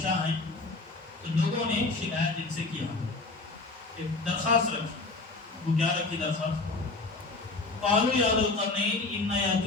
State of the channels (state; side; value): quieter; right; 3.5 dB